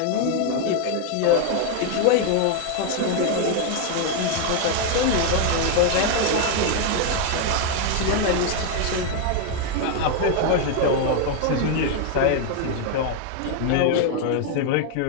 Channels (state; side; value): different; both; correlation 0.01